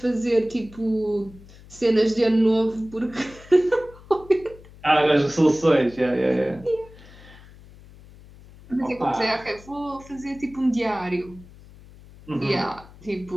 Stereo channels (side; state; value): left; noise; hum, 21 dB below the sound